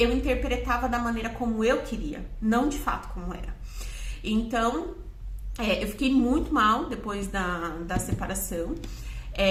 interpretava da maneira como eu queria, não de fato como era. Então, eu fiquei muito mal depois da separação,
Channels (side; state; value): both; identical; correlation 1.00